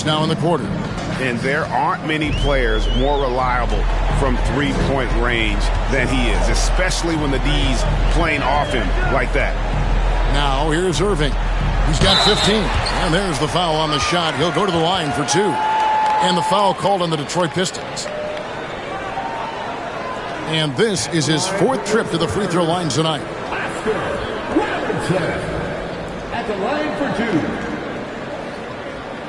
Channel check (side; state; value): both; identical; correlation 1.00